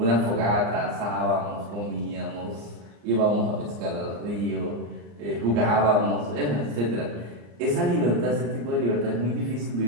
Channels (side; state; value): left; late; 34 ms